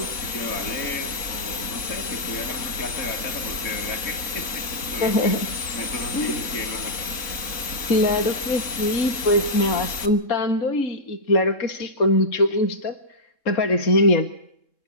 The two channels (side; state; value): right; late; 3.7 ms